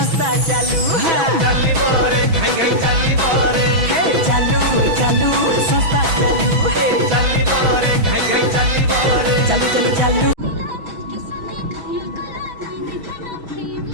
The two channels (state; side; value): late; left; 6.1 ms